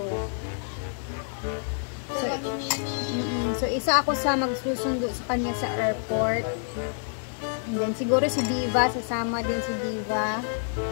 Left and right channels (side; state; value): right; silent; digital silence